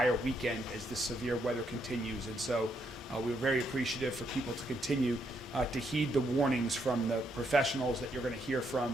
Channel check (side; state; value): both; normal; correlation 0.76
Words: weekend as the severe weather continues. And so we're very appreciative for people to continue to heed the warnings from the professionals that you're going to hear